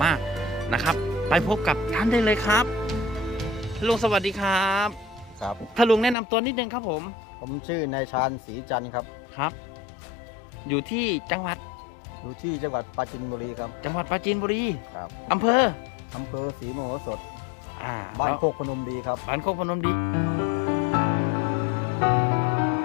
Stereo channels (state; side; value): drops out; right; at 6.2 s